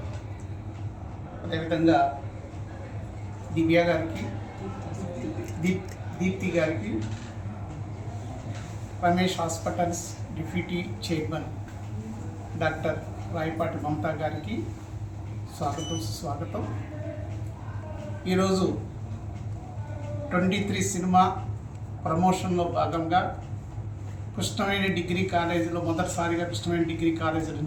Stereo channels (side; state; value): both; identical; correlation 1.00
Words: అదేవిధంగా దివ్య గారికి, దీప్తి గారికి, Ramesh hospitals deputy chairman doctor Rayapati Mamata గారికి స్వాగతం సుస్వాగతం. ఈరోజు 23 సినిమా ప్రమోషన్లో భాగంగా కృష్ణవేణి డిగ్రీ కాలేజీలో మొదటిసారిగా కృష్ణవేణి డిగ్రీ కాలేజీ